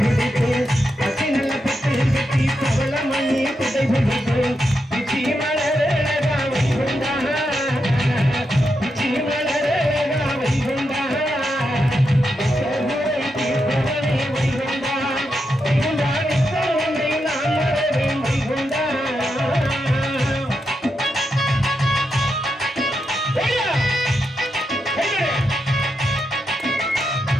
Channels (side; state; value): both; normal; correlation 0.85